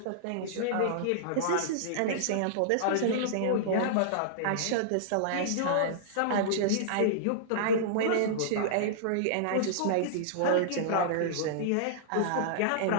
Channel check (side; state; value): both; different; correlation -0.02